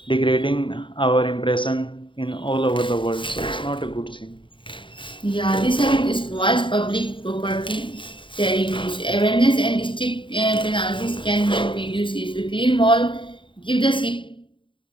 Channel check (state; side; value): late; right; 0.24 ms